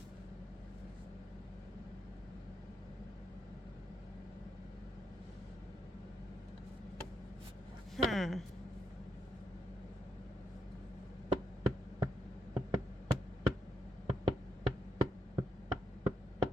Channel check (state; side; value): normal; both; correlation 0.81